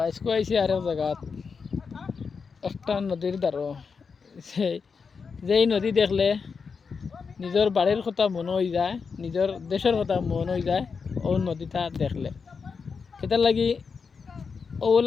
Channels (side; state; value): right; quieter; 5.4 dB